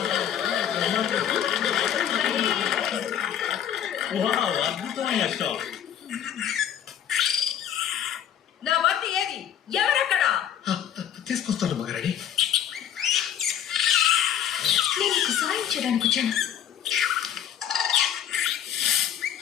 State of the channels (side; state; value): right; quieter; 9.9 dB